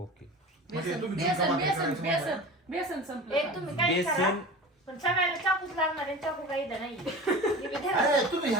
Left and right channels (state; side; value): normal; both; correlation 0.34